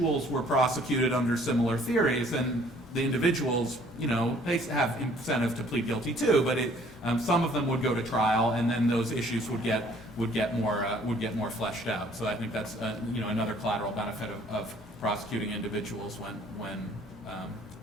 were prosecuted under similar theories, then the individuals, they have incentive to plead guilty too, but some of them would go to trial, and then those issues would get more fleshed out. So I think that's another collateral benefit of prosecuting individuals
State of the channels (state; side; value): normal; both; correlation 0.58